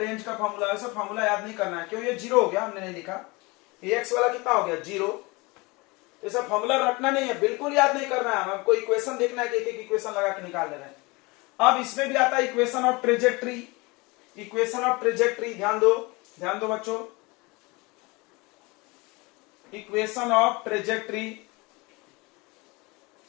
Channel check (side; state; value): right; quieter; 25.3 dB